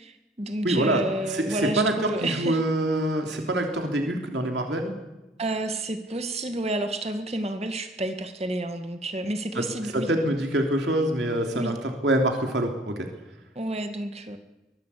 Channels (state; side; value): normal; both; correlation 0.52